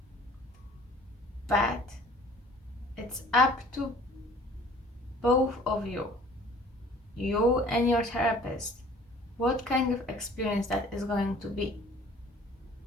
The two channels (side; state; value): both; normal; correlation 0.51